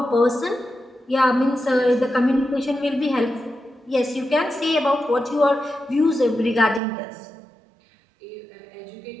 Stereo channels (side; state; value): left; drops out; at 6.8 s